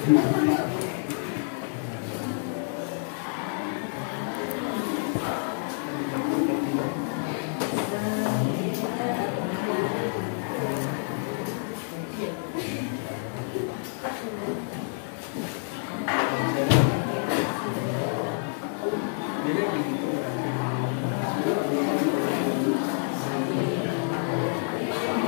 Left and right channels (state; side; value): silent; right; 58 dB below the other